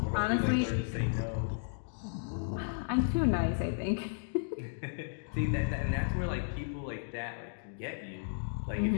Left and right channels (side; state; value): right; silent; digital silence